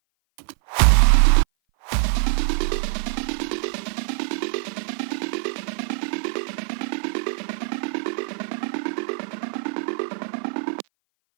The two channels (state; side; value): silent; left; 57 dB below the other